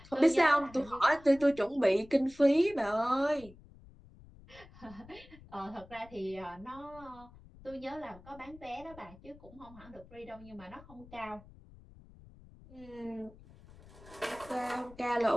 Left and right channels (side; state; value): left; noise; rumble, 21 dB below the sound